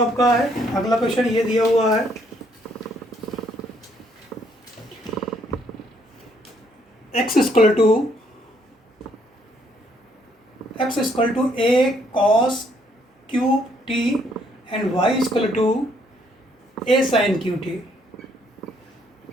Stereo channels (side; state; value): both; normal; correlation 0.68